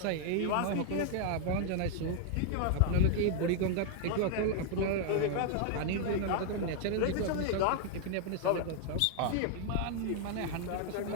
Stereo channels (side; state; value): both; different; correlation 0.00